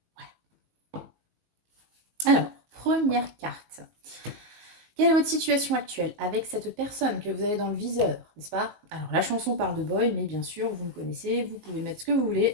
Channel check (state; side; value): late; left; 19 ms